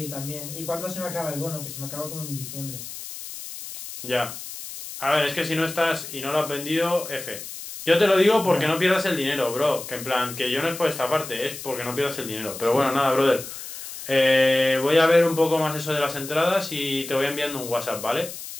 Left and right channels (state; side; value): noise; left; hiss, 11 dB below the sound